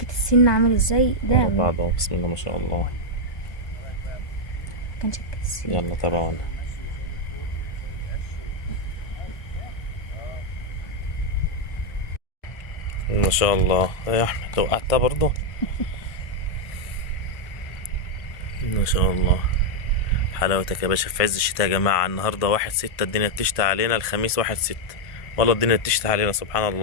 السن عامل ازاي ده؟ ورا بعض اهو. بسم الله ما شاء الله. مكان شكة السن. يلا تابعونا. ما شاء الله يا احمد، وقعتها برضه. ما شاء الله، حلاوتك يا باشا في عز الشتاء يا جماعة. النهاردة 1/6، الدنيا بتشتي علينا. الخميس 1/6، والله الدنيا بتشتي علينا سبحان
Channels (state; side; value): late; right; 1.6 ms